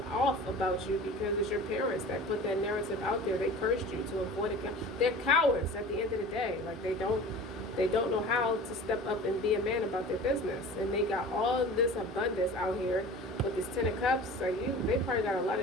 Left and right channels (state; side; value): normal; both; correlation 0.39